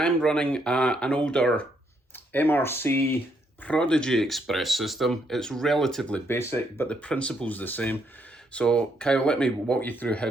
running an older MRC Prodigy Express system. It's relatively basic, but the principle's the same. So Kyle, let me walk you through how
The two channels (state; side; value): normal; both; correlation 0.74